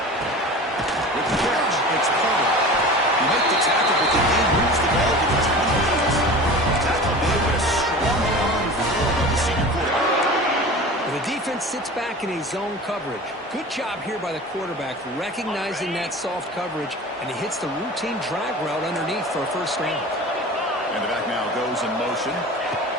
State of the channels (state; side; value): normal; both; correlation 0.36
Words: With the catch, it's Paul. You make the tackle, but the game moves the ball to the 28. Tackle made with a strong arm throw by the senior quarterback. The defense sits back in a zone coverage. Good job here by the quarterback, recognizing that soft coverage, and he hits the routine drag route underneath for a first down. And the back now goes in motion.